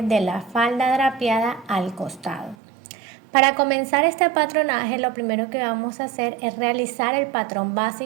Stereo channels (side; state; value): left; drops out; at 2.6 s